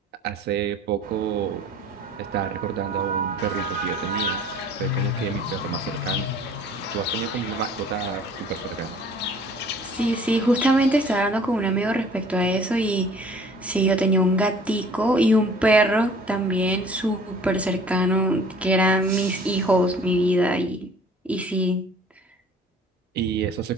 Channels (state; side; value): normal; both; correlation 0.51